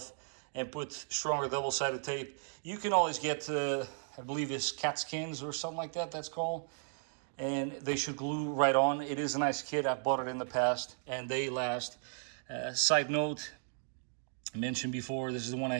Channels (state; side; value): silent; left; digital silence